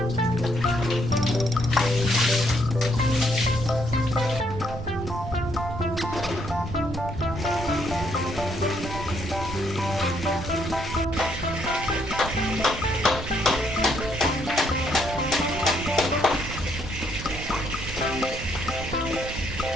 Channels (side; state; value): right; noise; rumble, 9 dB below the sound